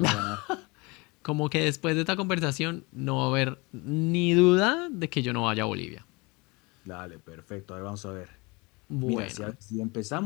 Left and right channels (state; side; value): quieter; right; 26.6 dB